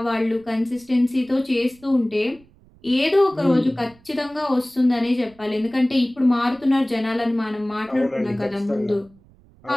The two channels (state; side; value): noise; right; rumble, 28 dB below the sound